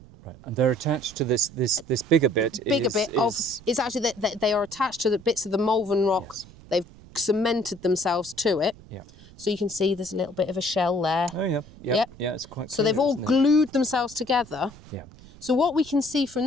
Right. And they're attached to this bigger bit. It's actually that they are attached to the bits of the Malvern rock. Yes. They've cemented themselves to it. Yeah. So you can see there's a little bit of a shell there. Oh, yeah. Yeah, yeah, it's quite So clear, they've all glued themselves together. Yeah. So what we can see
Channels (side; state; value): right; noise; rumble, 21 dB below the sound